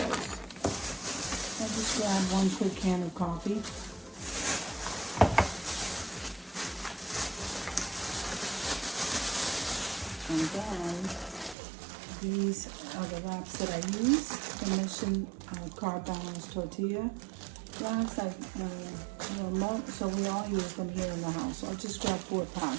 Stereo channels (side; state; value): left; drops out; at 11.6 s